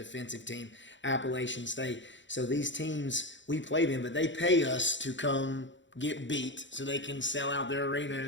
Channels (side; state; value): right; late; 0.54 ms